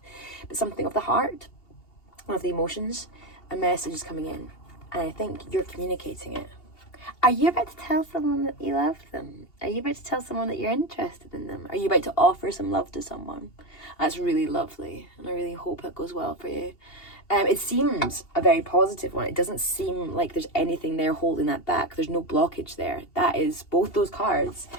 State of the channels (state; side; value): late; right; 2.8 ms